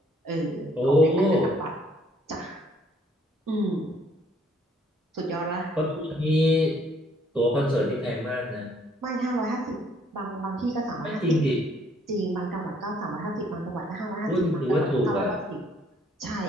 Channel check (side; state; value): both; normal; correlation 0.64